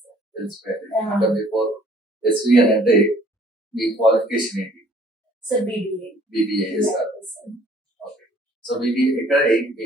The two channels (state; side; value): normal; both; correlation 0.57